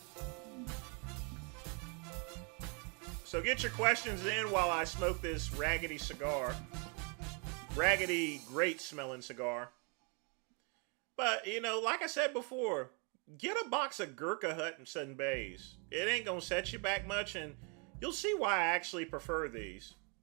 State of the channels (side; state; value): left; quieter; 35.3 dB